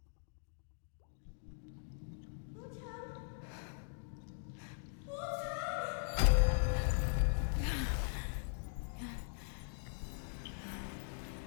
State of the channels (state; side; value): silent; right; digital silence